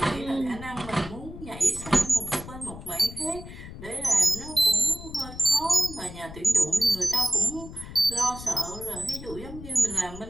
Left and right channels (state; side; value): noise; left; rumble, 13 dB below the sound